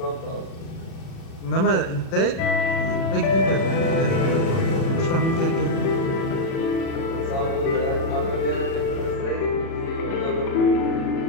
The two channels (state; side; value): late; right; 36 ms